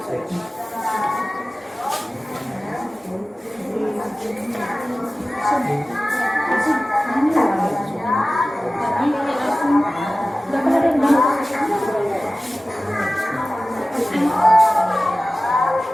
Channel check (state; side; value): normal; both; correlation 0.96